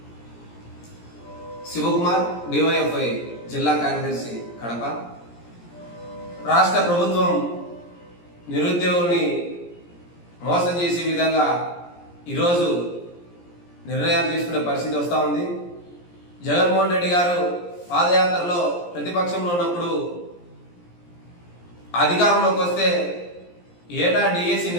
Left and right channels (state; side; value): late; right; 17 ms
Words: శివకుమార్, డివైఎఫ్ఐ జిల్లా కార్యదర్శి, కడప. రాష్ట్ర ప్రభుత్వం నిరుద్యోగుల్ని మోసం చేసే విధంగా ఈరోజు నిర్ణయాలు తీసుకునే పరిస్థితి వస్తూ ఉంది. జగన్మోహన్ రెడ్డి గారు పాదయాత్రలో ప్రతిపక్షంలో ఉన్నప్పుడు అధికారంలోకి వస్తే ఏటా డిఎస్సి